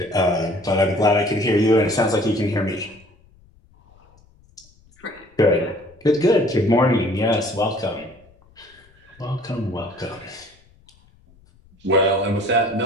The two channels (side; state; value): left; noise; rumble, 30 dB below the sound